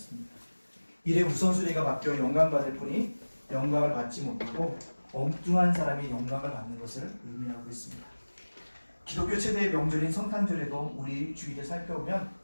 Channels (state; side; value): inverted; both; correlation -1.00